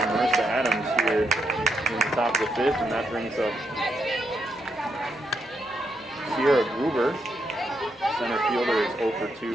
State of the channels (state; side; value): normal; both; correlation 0.79